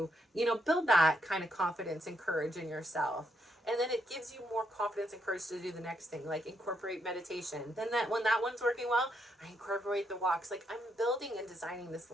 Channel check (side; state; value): both; normal; correlation 0.77